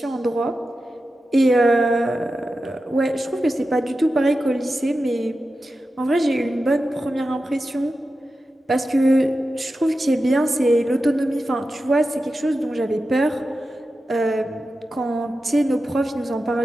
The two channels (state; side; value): normal; both; correlation 0.92